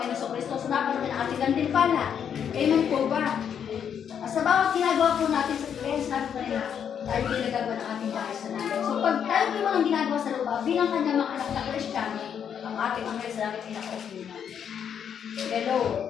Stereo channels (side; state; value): right; quieter; 8.2 dB